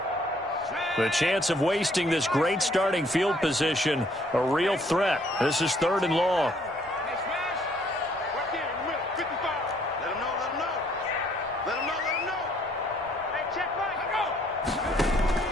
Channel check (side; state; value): both; normal; correlation 0.64